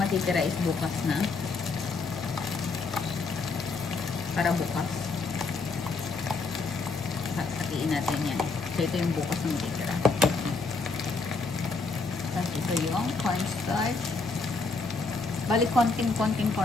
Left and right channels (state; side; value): quieter; right; 4.0 dB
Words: is bukas na. Para bukas. Hatiin natin yan. So ito yung bukas na matitira. Tapos ito yung cornstarch. Bali, konting